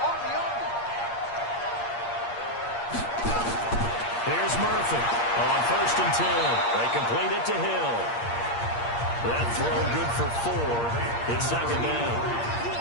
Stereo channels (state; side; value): late; right; 8.6 ms